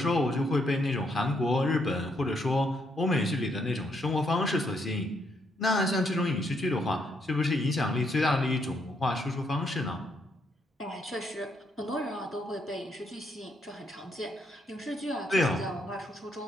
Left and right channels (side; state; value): both; normal; correlation 0.75